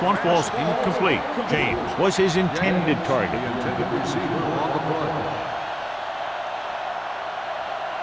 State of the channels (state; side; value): identical; both; correlation 1.00